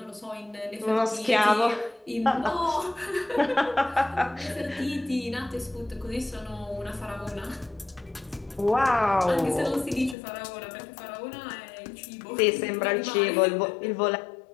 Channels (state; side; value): drops out; right; at 10.2 s